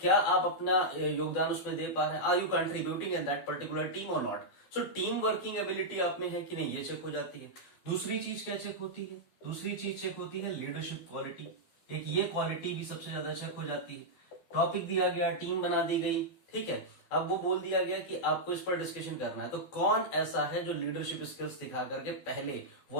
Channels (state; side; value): late; right; 12 ms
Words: आप अपना योगदान उसमें दे पा रहे हैं, are you contributing in that particular team or not. So team working ability आप में है कि नहीं, ये चेक हो जाती है। दूसरी चीज क्या चेक होती है, दूसरी चीज चेक होती है लीडरशिप क्वालिटी। एक ये क्वालिटी भी सबसे ज्यादा चेक हो जाती है। टॉपिक दिया गया, टीम बना दी गई, ठीक है, अब वो बोल दिया गया कि आपको इस पर डिस्कशन करना है, तो कौन ऐसा है जो लीडरशिप स्किल्स दिखा करके पहले